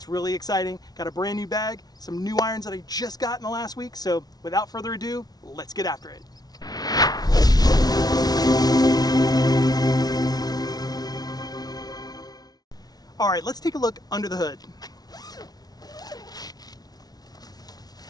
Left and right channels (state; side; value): late; right; 0.19 ms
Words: really exciting. Got a brand new bag, some new irons that I just got in the last week, so without further ado, let's get after it. Alright, let's take a look under the hood.